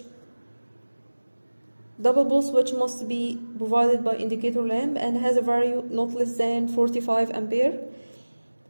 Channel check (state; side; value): inverted; both; correlation -1.00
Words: Double pole switch must be provided by indicator lamp and has a value not less than 45 ampere